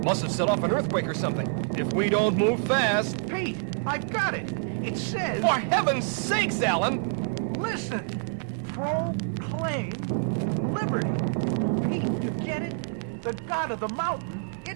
must have set off an earthquake or something. If we don't move fast... Pete, I got it. It says... For heaven's sakes, Alan! Listen. Proclaim liberty. Pete, you get it? The god of the mountain,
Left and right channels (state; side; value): silent; left; 60 dB below the other